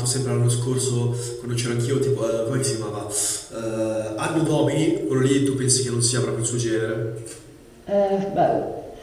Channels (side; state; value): both; identical; correlation 1.00